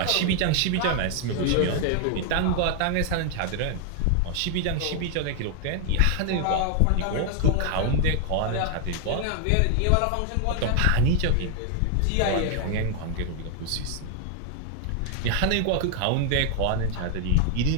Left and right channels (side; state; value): both; different; correlation 0.00